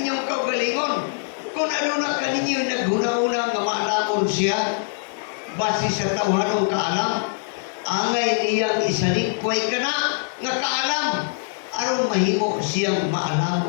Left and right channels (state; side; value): silent; right; 63 dB below the other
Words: kaugalingon. Kung ano na kaninyo naghuna-una nga maalamon siya, base sa tawhanong kaalam, angay niyang isalikway ka na nga kaalam, aron mahimo siyang